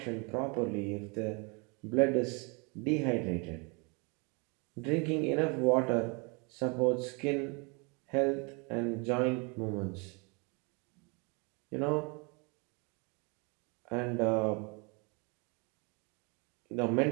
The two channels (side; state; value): left; quieter; 31.7 dB